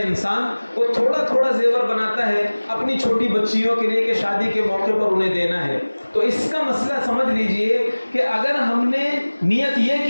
وہ تھوڑا تھوڑا زیور بناتا ہے اپنی چھوٹی بچیوں کے لیے کہ شادی کے موقع پر انہیں دینا ہے۔ تو اس کا مسئلہ سمجھ لیجئے کہ اگر ہم نے نیت یہ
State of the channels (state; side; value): inverted; both; correlation -1.00